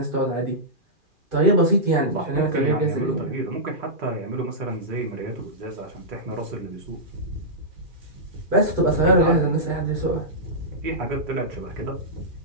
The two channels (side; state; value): left; late; 2.4 ms